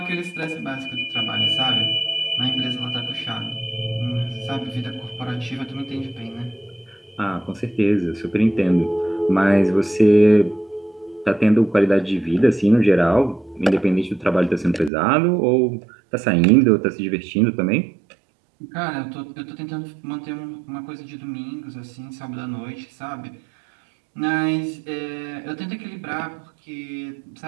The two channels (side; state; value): left; drops out; at 14.9 s